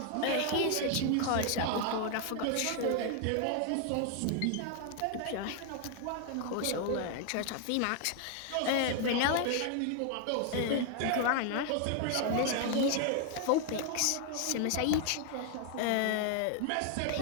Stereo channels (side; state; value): both; different; correlation 0.00